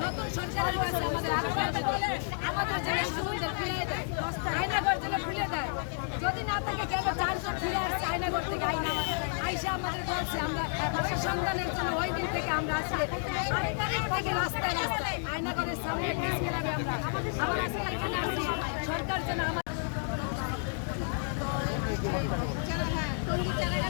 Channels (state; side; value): silent; right; 57 dB below the other